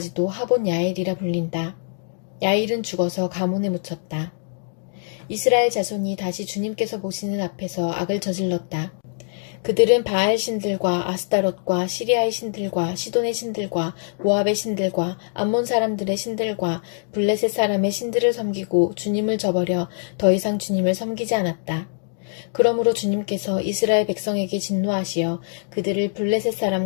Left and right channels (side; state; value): right; silent; digital silence